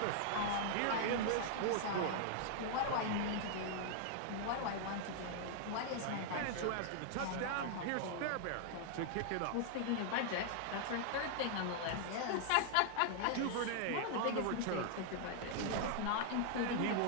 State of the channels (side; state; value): both; different; correlation 0.00